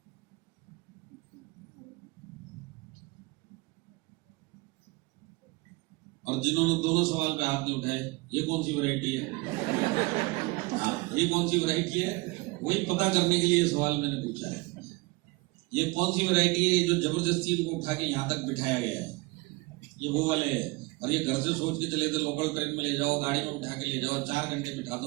और जिन्होंने दोनों सवाल पे हाथ नहीं उठाए, ये कौन सी वैरायटी है? हाँ, ये कौन सी वैरायटी है? वही पता करने के लिए सवाल मैंने पूछा है। ये कौन सी वैरायटी है जो जबरदस्ती उनको उठा के यहाँ तक बिठाया गया है? ये वो वाले हैं। और ये घर से सोच के चले थे लोकल ट्रेन में ले जाओ, गाड़ी में उठा के ले जाओ, 4 घंटे बिठा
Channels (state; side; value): quieter; left; 24.7 dB